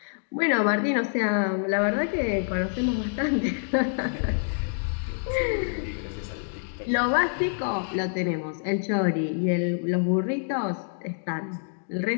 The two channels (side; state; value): right; silent; digital silence